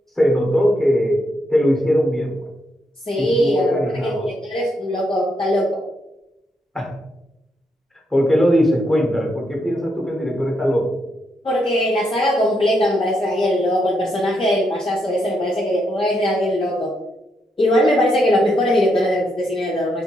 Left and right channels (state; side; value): normal; both; correlation 0.79